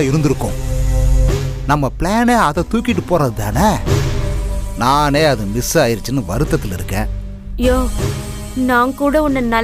இருந்திருக்கும். நம்ம பிளானே அதை தூக்கிட்டு போறது தானே. நானே அது மிஸ் ஆயிருச்சுன்னு வருத்தத்தில் இருக்கேன். யோ, நான் கூட உன்னை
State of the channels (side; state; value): both; identical; correlation 1.00